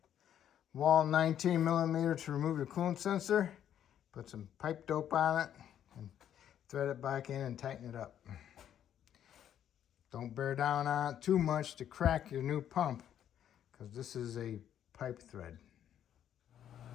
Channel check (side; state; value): right; quieter; 10.1 dB